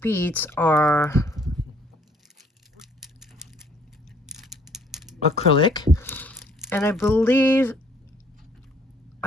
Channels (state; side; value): normal; both; correlation 0.62